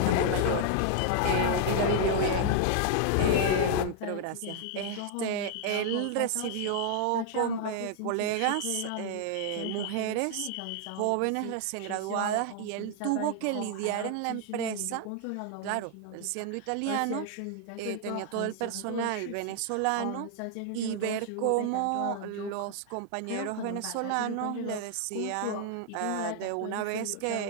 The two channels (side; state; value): both; different; correlation 0.00